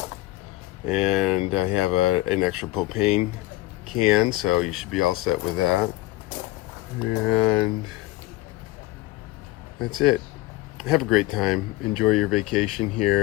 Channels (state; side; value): quieter; right; 17.8 dB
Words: and I have an extra propane can, so you should be all set with that. And that's it. Have a great time. Enjoy your vacation